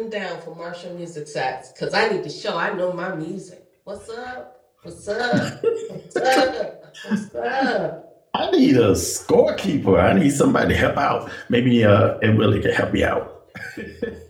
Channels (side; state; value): both; identical; correlation 1.00